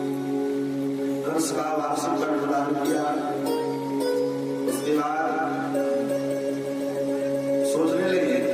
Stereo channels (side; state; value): both; identical; correlation 1.00